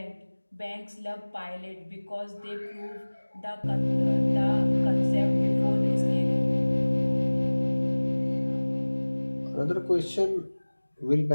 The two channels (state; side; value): inverted; both; correlation -1.00